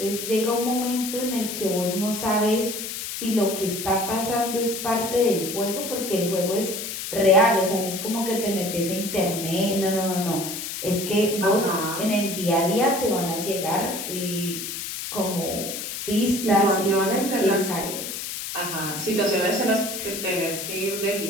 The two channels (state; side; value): noise; left; hiss, 6 dB below the sound